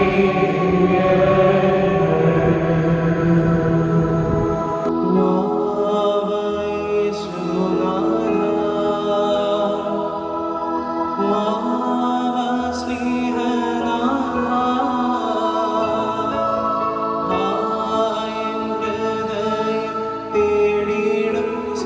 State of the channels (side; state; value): both; identical; correlation 1.00